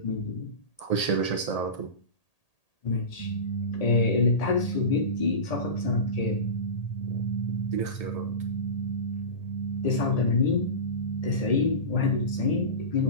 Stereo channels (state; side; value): late; right; 1.8 ms